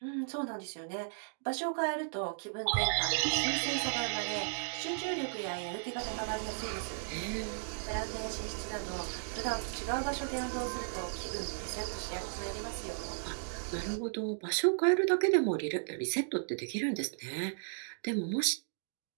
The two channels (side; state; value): left; silent; digital silence